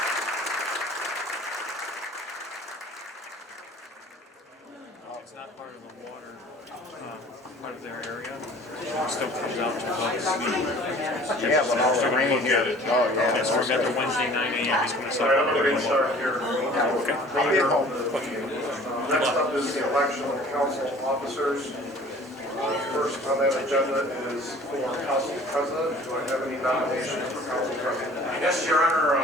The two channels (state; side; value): normal; both; correlation 0.49